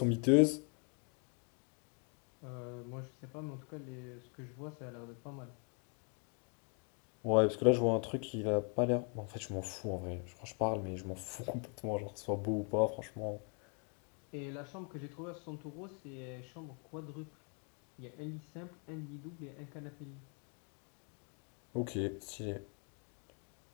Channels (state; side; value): quieter; right; 39.2 dB